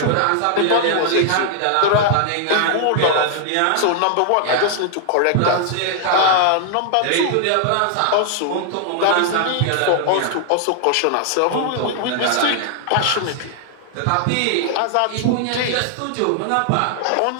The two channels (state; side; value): different; both; correlation 0.00